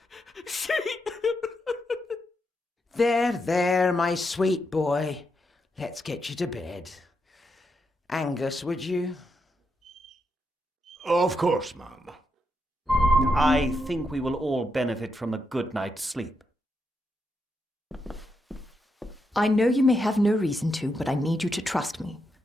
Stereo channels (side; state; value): both; normal; correlation 0.83